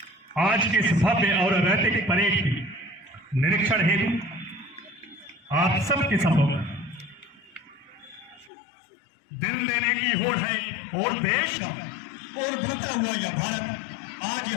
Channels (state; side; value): drops out; right; at 8.5 s